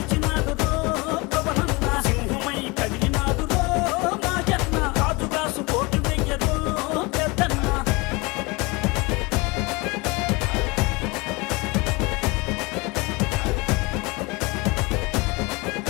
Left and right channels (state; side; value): quieter; right; 25.7 dB